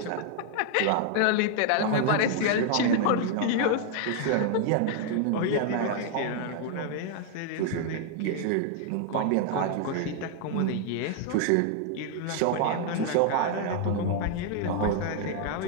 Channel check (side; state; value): both; different; correlation 0.00